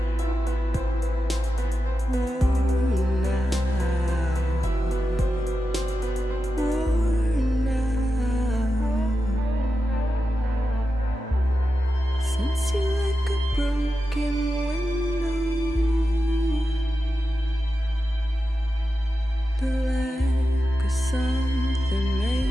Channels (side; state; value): both; normal; correlation 0.90